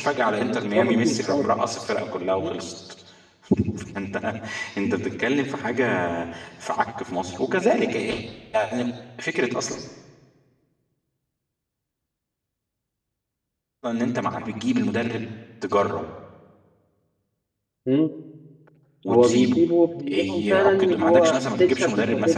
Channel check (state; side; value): identical; both; correlation 1.00